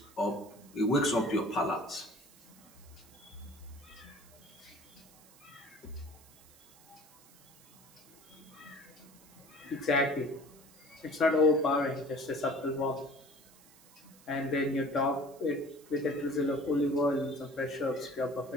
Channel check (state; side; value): noise; right; hiss, 24 dB below the sound